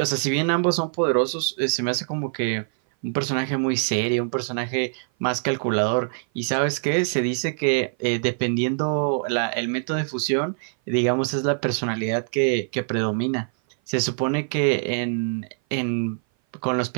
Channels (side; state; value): left; silent; 57 dB below the other